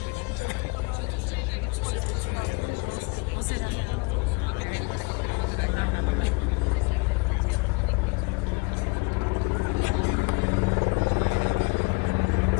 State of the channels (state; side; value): quieter; right; 26.4 dB